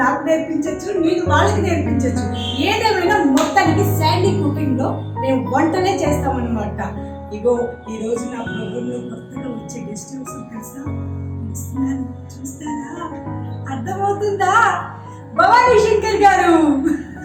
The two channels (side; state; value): both; identical; correlation 1.00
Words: నాకు నేర్పించచ్చు, నేను వాళ్ళకి నేర్పించచ్చు. ఏదేమైనా మొత్తానికి శాండీ కుకింగ్ లో మేము వంటనే చేస్తామన్నమాట. ఇగో ఈ రోజు నా ప్రోగ్రామ్ లో కొత్తగా వచ్చే గెస్ట్ హౌస్ తెలుసా? చూస్తారా? అర్థమవుతుందా? భవానీ శంకర్ గారు.